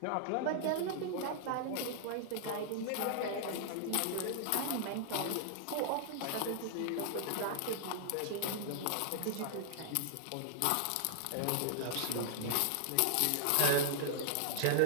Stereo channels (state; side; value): different; both; correlation -0.01